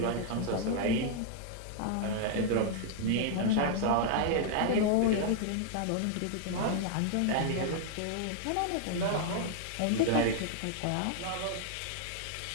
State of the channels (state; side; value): different; both; correlation 0.00